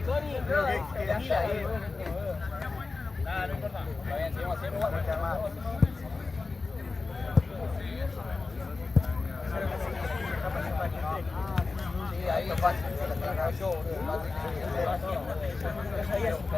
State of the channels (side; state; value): right; quieter; 3.9 dB